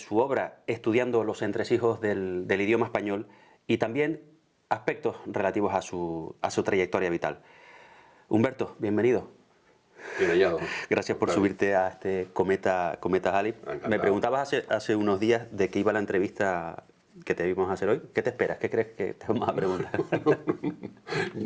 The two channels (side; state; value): both; identical; correlation 1.00